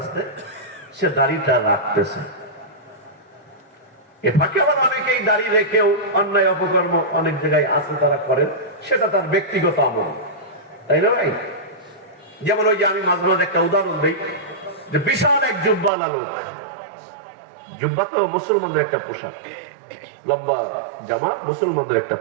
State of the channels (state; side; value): drops out; left; at 15.9 s